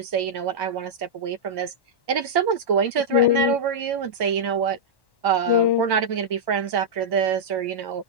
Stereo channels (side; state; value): right; late; 1.1 ms